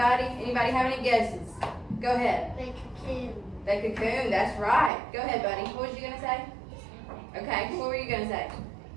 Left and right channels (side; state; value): left; drops out; at 4.9 s